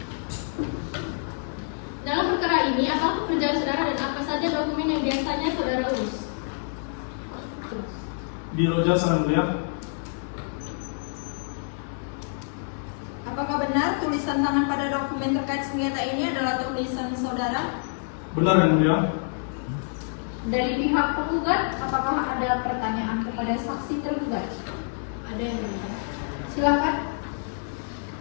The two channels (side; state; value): right; silent; digital silence